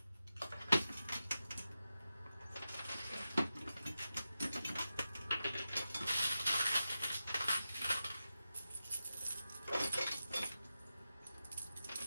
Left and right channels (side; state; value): both; inverted; correlation -0.92